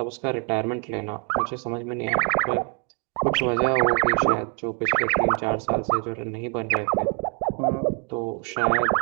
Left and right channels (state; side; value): quieter; left; 37.2 dB